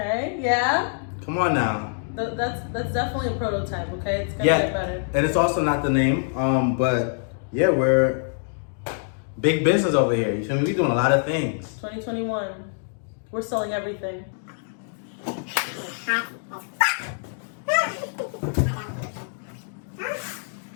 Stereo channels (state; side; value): silent; right; digital silence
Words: yeah. Come on now. That's definitely a prototype, okay? It's gonna get better. And it's also not the name, but yeah, we're big business over here. You feel me? We're doing a lot of things. 2021. We're selling everything.